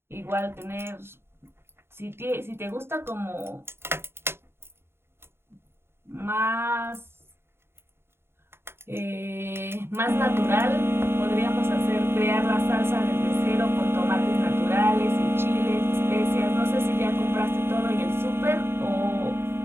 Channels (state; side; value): late; left; 0.11 ms